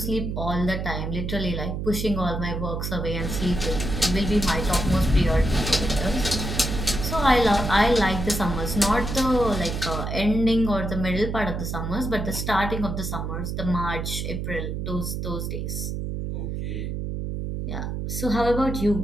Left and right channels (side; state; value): right; noise; hum, 3 dB below the sound